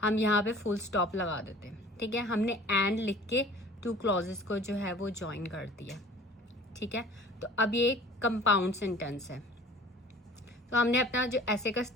हम यहाँ पे full stop लगा देते हैं. ठीक है, हमने and लिख के two clauses को जो है वो join कर दिया. ठीक है, तो अब ये compound sentence है. तो हमने अपना जो ऐसे का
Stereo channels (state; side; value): normal; both; correlation 0.47